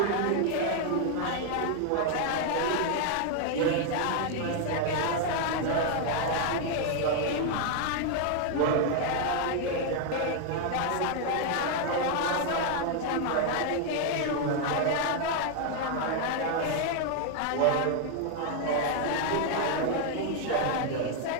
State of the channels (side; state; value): both; different; correlation 0.01